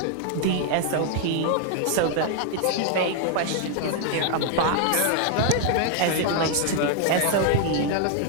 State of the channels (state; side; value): different; both; correlation 0.00